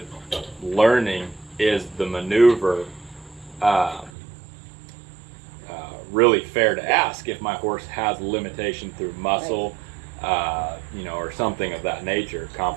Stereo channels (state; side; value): drops out; left; at 4.1 s